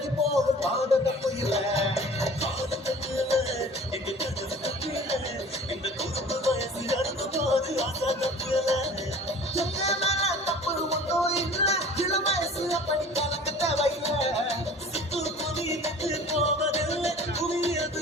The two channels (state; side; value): normal; both; correlation 0.45